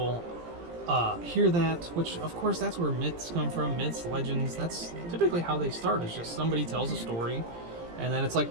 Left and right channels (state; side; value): late; left; 17 ms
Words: hear that, which of course that's where myths come from. Myths, legends, that's typically how they start. It's just somebody tells a story, and then it's like